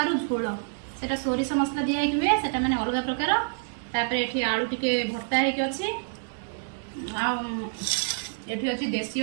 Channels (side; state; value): left; silent; 60 dB below the other